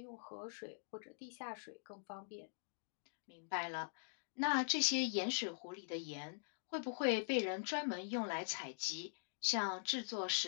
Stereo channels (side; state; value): right; silent; digital silence